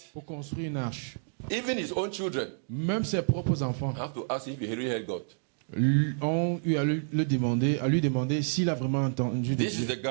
pour construire une arche. Even his own children Même ses propres enfants have to ask if he really heard God. ont eu à lui demander s'il a vraiment entendu de This is Dieu. the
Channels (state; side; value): silent; left; digital silence